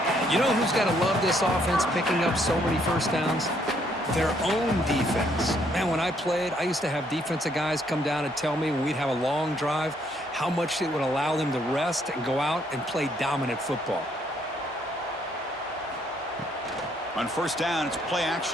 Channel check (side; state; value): both; normal; correlation 0.69